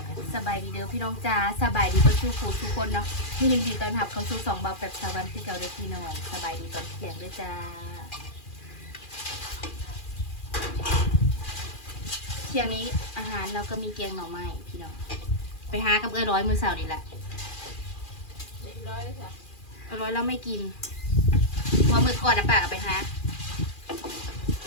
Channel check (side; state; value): right; late; 2.4 ms